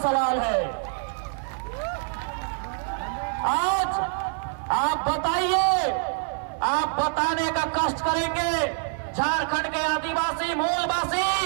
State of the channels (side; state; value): left; silent; digital silence